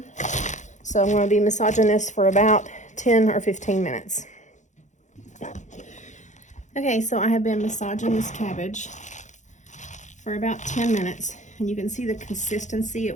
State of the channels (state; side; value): late; right; 0.35 ms